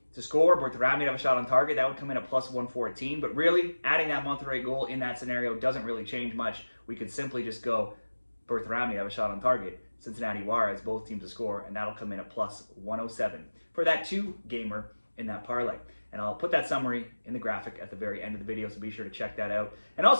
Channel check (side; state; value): both; inverted; correlation -1.00